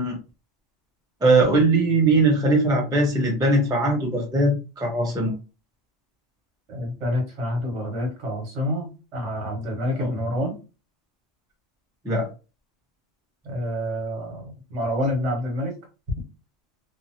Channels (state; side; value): normal; both; correlation 0.36